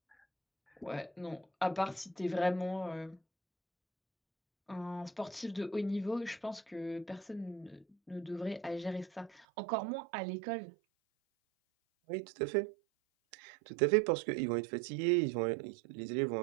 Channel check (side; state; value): left; drops out; at 9.5 s